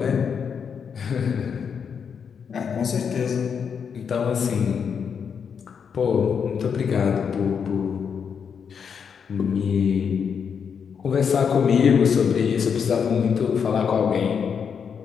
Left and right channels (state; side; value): quieter; right; 6.8 dB